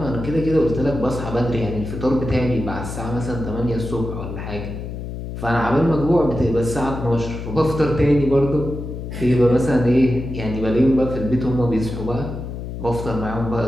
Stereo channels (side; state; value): left; noise; hum, 7 dB below the sound